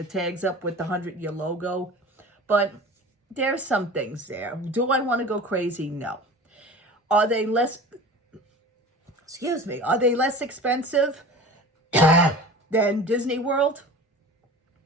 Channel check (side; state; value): both; normal; correlation 0.38